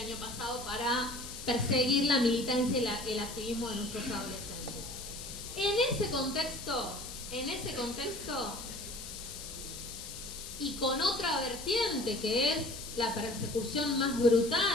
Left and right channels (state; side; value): noise; left; hiss, 10 dB below the sound